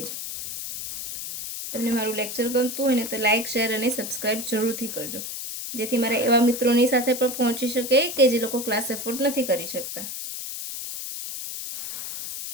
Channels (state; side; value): noise; left; hiss, 7 dB below the sound